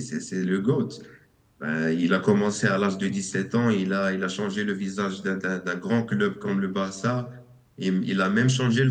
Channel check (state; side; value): identical; both; correlation 1.00